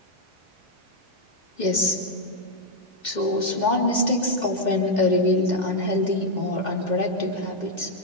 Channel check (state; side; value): late; right; 2.1 ms